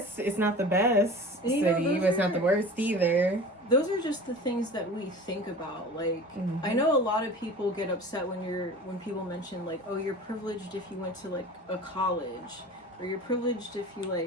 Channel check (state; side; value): normal; both; correlation 0.38